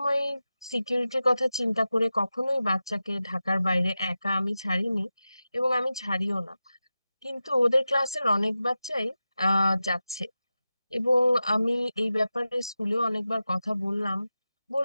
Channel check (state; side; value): inverted; both; correlation -0.93